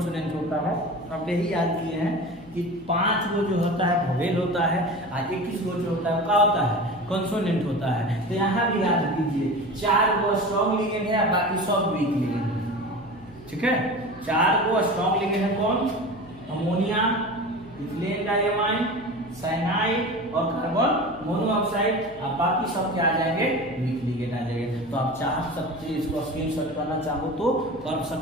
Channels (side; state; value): left; noise; hum, 22 dB below the sound